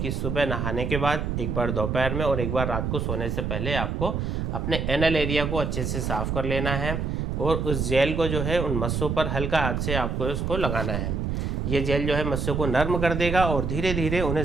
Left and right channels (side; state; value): right; noise; rumble, 1 dB below the sound